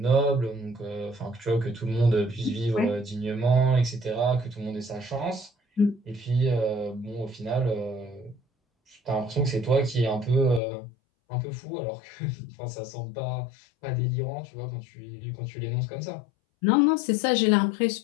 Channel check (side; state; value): right; drops out; at 10.6 s